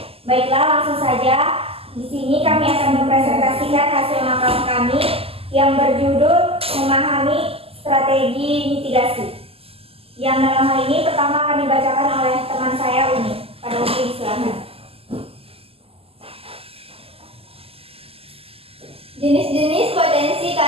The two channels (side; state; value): left; late; 0.28 ms